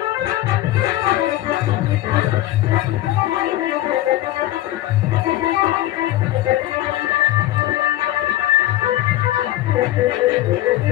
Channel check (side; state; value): right; quieter; 14.9 dB